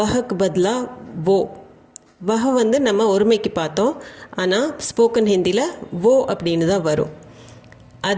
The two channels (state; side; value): identical; both; correlation 1.00